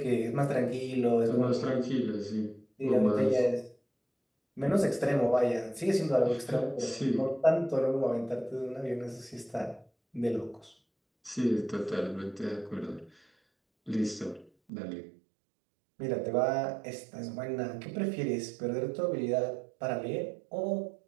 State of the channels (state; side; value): drops out; left; at 14.5 s